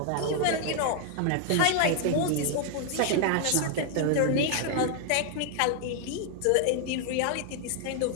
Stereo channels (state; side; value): different; both; correlation 0.00